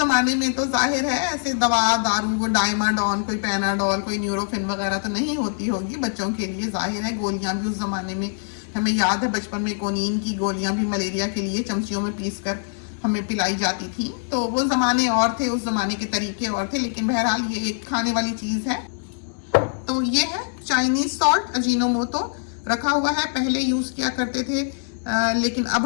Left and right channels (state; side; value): silent; right; digital silence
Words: में तो जाहिर है ऐसे दवा दारू, वो डायमाडोन, कोई पैनाडोल, कोई न्यूरोफिन वगैरह तो नहीं होती होगी बच्चों के लिए, जाहिर है। गोलियां भी उस जमाने में हमें याद है, बचपन में कोनीन की गोलियां भी मलेरिया के लिए चमचियों में पीस कर हमें पिलाई जाती थी। तो वो ज़माने और थे, उस ज़माने के तरीके और थे, लेकिन बहरहाल ये एक खाने वाली चीज़ है। तो ये है चाइनीज सॉल्ट, अजीनोमोटो रखा हुआ है। पहले यूज़ किया करते थे लेकिन अब